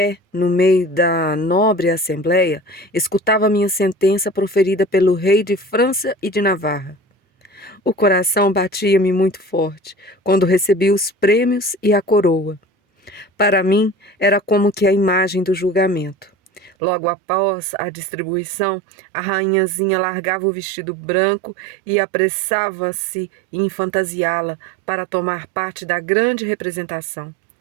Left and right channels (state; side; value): drops out; left; at 16.7 s